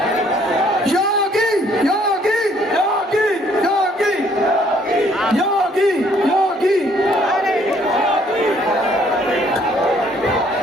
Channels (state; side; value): normal; both; correlation 0.63